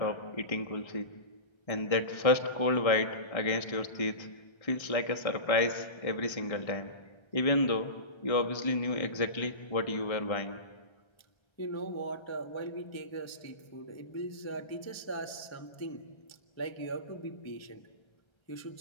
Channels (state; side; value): late; right; 1.3 ms